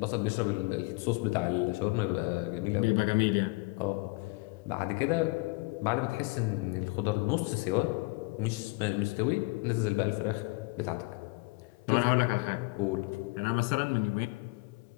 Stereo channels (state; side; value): quieter; right; 27.0 dB